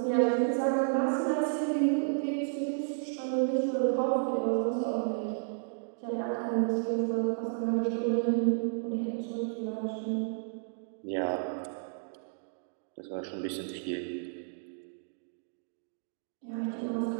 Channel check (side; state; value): left; silent; digital silence